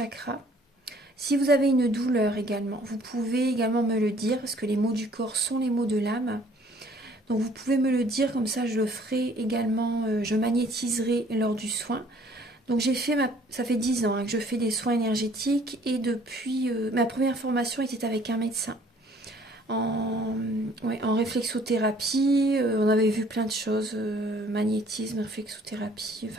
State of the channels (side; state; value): both; normal; correlation 0.58